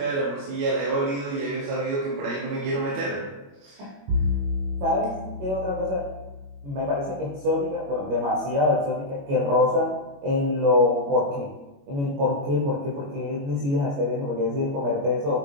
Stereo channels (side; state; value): left; late; 21 ms